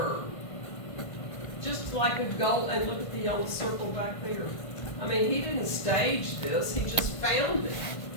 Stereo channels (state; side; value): late; right; 1.5 ms